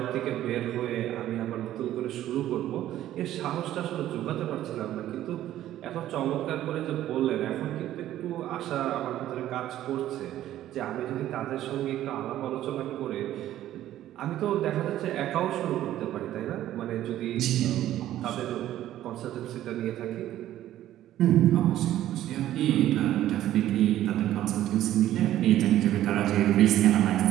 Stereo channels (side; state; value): left; quieter; 13.0 dB